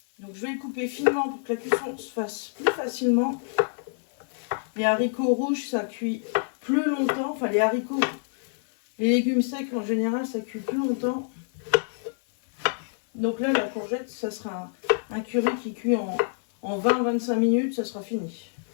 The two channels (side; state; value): right; silent; 60 dB below the other